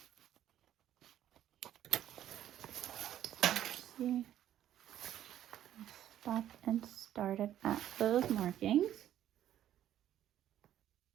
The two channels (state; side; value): quieter; left; 11.7 dB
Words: See, stop and started at those markings.